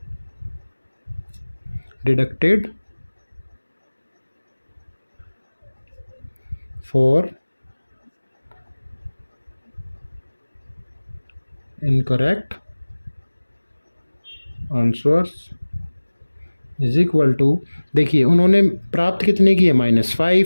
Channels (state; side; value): inverted; both; correlation -1.00